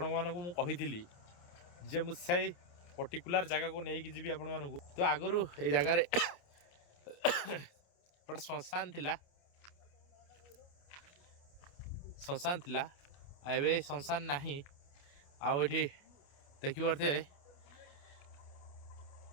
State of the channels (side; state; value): right; late; 28 ms